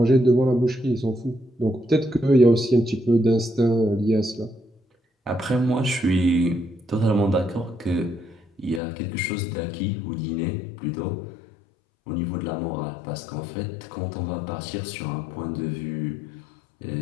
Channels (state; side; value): drops out; right; at 8.8 s